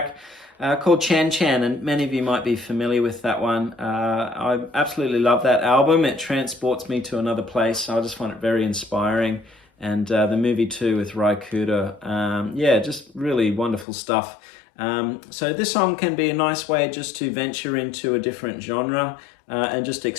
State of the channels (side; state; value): right; drops out; at 13.9 s